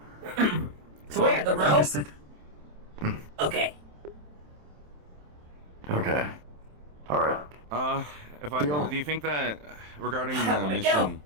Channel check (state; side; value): late; left; 27 ms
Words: So where? The row? Understood. Okay. Okay. Alright. Do you think that regarding How the do I mission... go?